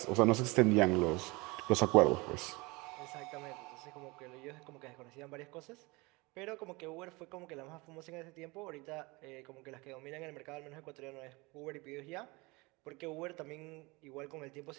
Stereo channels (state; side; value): quieter; left; 24.9 dB